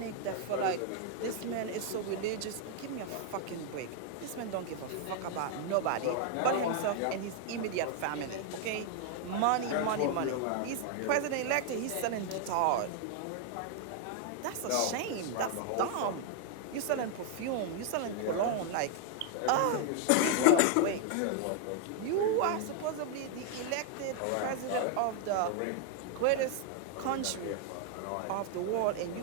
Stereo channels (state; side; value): different; both; correlation 0.00